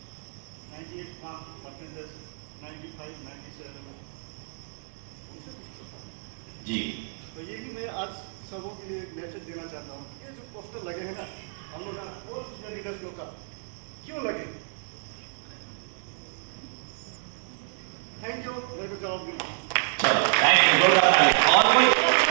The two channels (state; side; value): silent; left; digital silence